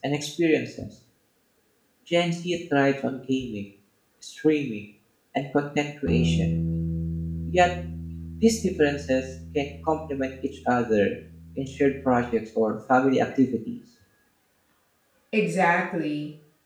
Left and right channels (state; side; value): identical; both; correlation 1.00